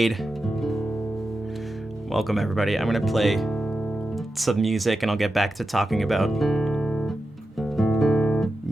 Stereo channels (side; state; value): both; normal; correlation 0.91